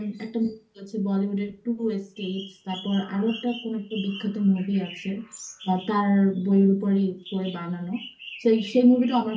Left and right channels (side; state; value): both; identical; correlation 1.00